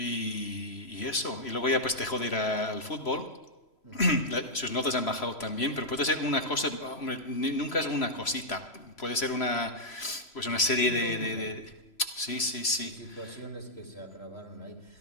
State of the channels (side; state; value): right; late; 3.0 ms